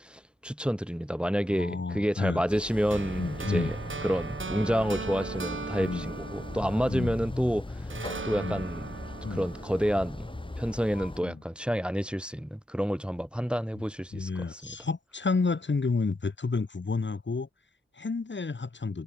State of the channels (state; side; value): normal; both; correlation 0.86